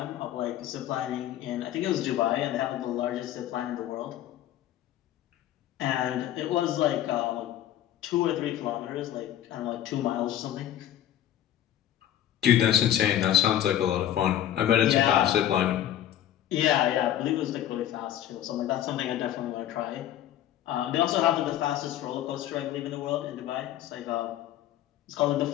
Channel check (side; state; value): right; quieter; 11.8 dB